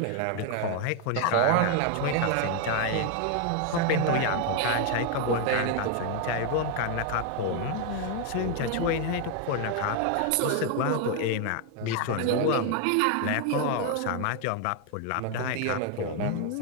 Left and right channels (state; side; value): different; both; correlation 0.01